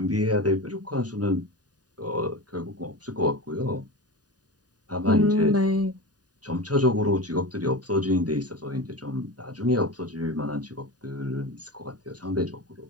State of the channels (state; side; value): late; left; 0.68 ms